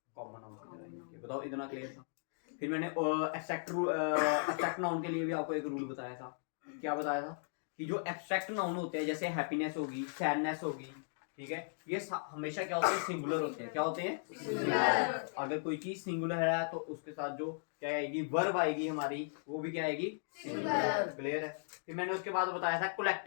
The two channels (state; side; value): silent; right; digital silence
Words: कॉमन नाउन की तरह यूज किया। बताओ, इतना क्लियर था? फिर मैंने एब्स्ट्रैक्ट नाउन के लिए भी आपको एक रूल बताया था। क्या बताया था? कि जो एब्स्ट्रैक्ट नाउन होते हैं, जैसे हैप्पीनेस होगी, सैडनेस होगी, ठीक है, ये हमेशा क्या होते हैं? सिंगुलर होते हैं। क्या होते हैं? सिंगुलर। अगर कोई चीज सिंगुलर है तो उसके साथ जो क्या आएगी, वर्ब आएगी हमारी, वो भी क्या आएगी? सिंगुलर। क्लियर है? फिर मैंने उसके बाद बताया था